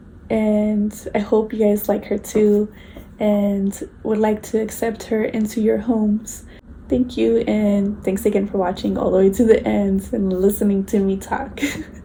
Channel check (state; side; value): identical; both; correlation 1.00